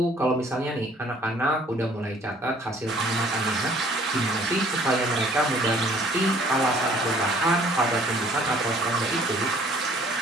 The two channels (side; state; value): both; normal; correlation 0.56